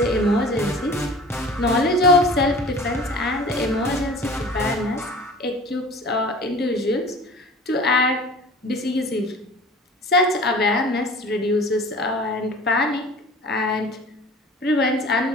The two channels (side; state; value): both; normal; correlation 0.43